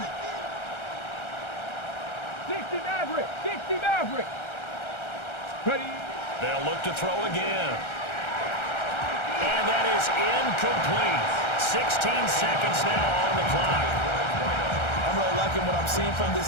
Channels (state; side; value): late; right; 1.3 ms